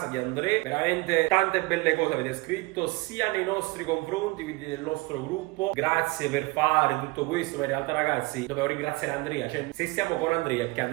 di Andrea. Veramente tante belle cose avete scritto, sia nei nostri confronti, quindi nel nostro gruppo. Grazie per fare tutto questo, ma in realtà ragazzi dovevo ringraziare Andrea. Cioè, se stiamo con Andrea, perché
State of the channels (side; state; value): left; quieter; 23.7 dB